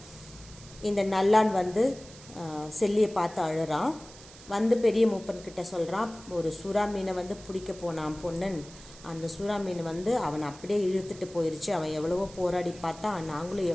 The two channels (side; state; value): right; noise; hiss, 19 dB below the sound